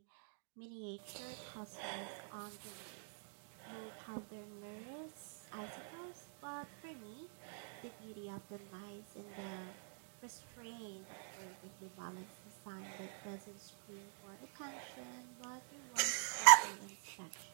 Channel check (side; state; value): left; silent; digital silence